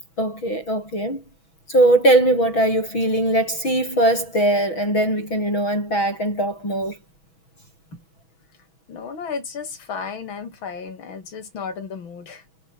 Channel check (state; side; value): late; right; 6.2 ms